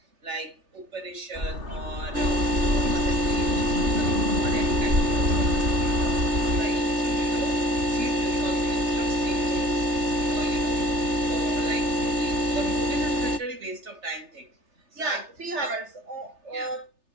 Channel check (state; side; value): late; left; 3.3 ms